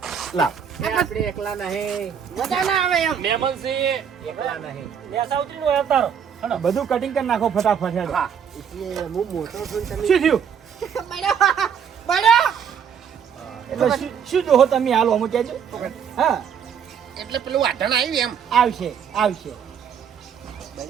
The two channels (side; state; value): left; quieter; 7.7 dB